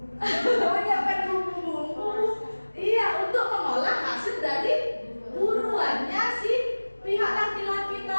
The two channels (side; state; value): both; inverted; correlation -1.00